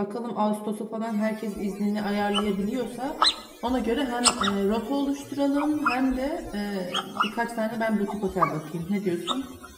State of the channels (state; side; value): identical; both; correlation 1.00